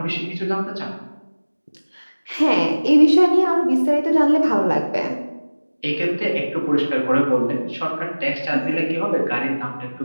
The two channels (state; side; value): inverted; both; correlation -1.00